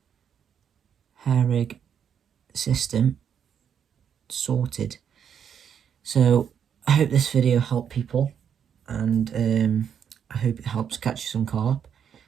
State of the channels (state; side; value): quieter; left; 8.1 dB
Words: hair rig system sorted. So I hope this video helped people, and I hope it helps catch you some carp,